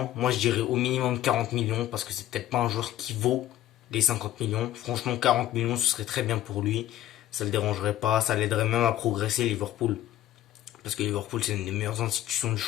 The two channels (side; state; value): right; quieter; 13.2 dB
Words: Moi, je dirais au minimum 40 millions parce que c'est peut-être pas un joueur qui vaut les 50 millions. Franchement, 40 millions, ce serait très bien pour lui. Ça le dérangerait pas. Ça l'aiderait même à progresser, Liverpool. Parce que Liverpool, c'est une des meilleures institutions du